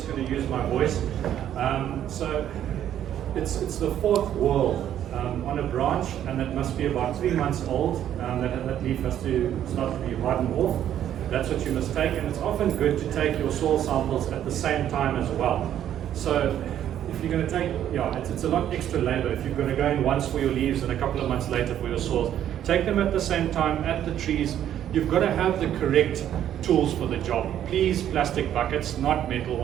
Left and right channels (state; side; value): quieter; left; 10.8 dB